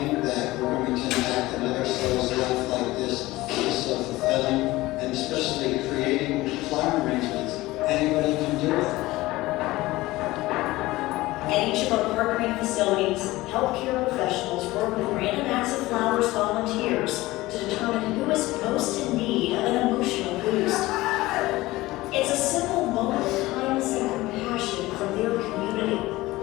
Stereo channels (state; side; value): quieter; right; 18.8 dB